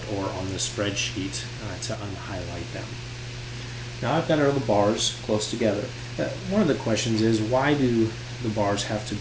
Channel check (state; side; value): identical; both; correlation 1.00